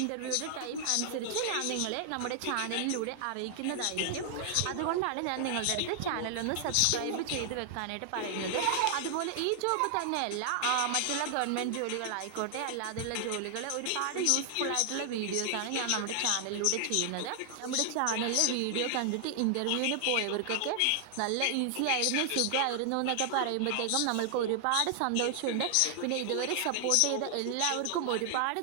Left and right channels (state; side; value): different; both; correlation 0.00